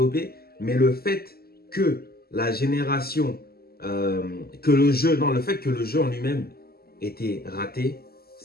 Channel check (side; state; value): right; late; 0.45 ms